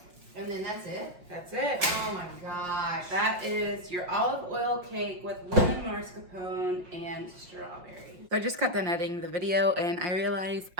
And then that's it? That's it. Oh my gosh. That is your olive oil cake with lemon mascarpone and strawberry. So I just got done editing the video and I realized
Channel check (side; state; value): left; late; 5.6 ms